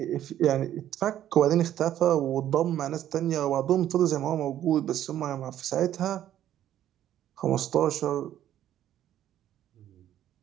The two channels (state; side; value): quieter; left; 11.6 dB